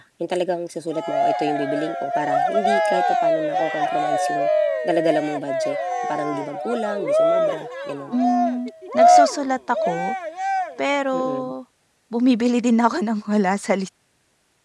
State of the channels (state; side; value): identical; both; correlation 1.00